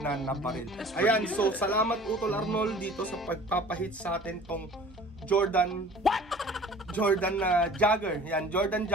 nabaril. Ayan, so salamat Utol Arnold dito sa pagpapahit sa atin tong Jordan na jogger. Yan, Jordan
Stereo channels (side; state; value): both; normal; correlation 0.46